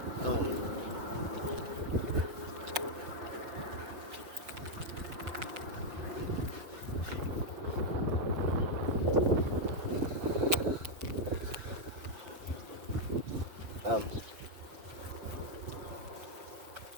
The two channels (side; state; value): left; late; 5.5 ms